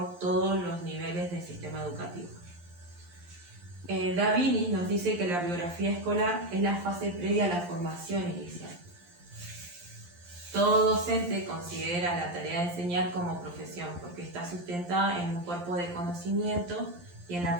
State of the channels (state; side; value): late; left; 11 ms